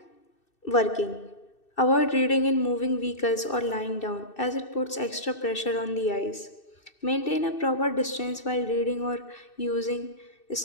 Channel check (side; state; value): right; late; 2.6 ms